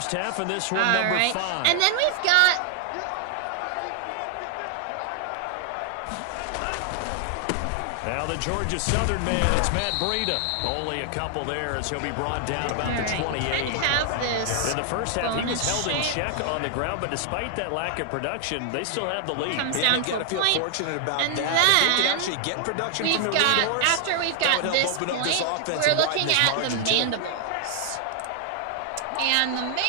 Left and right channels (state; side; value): different; both; correlation 0.00